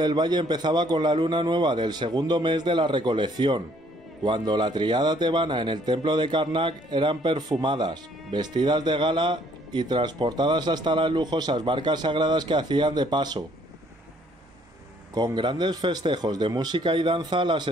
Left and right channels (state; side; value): normal; both; correlation 0.63